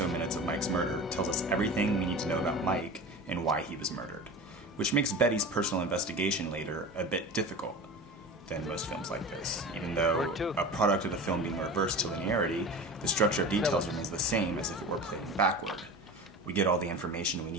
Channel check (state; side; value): normal; both; correlation 0.33